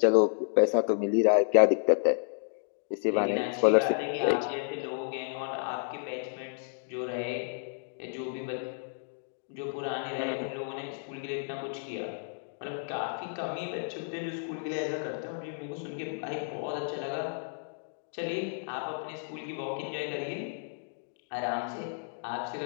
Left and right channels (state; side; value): silent; right; digital silence